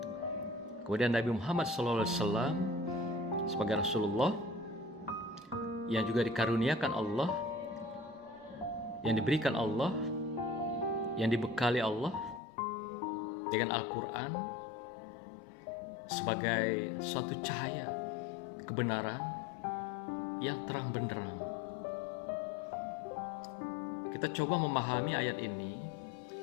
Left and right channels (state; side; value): drops out; right; at 12.4 s